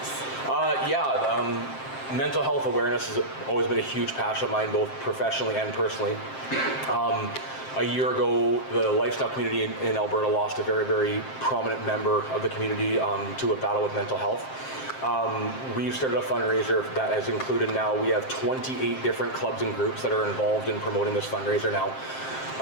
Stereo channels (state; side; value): late; right; 7.6 ms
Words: Mental health awareness has always been a huge passion of mine, both professionally and personally. A year ago, the lifestyle community in Alberta lost a very, very prominent member of the community to a battle with mental health. We've started a fundraiser that has included, now we have 28 different clubs and groups that are involved in promoting this fundraiser now.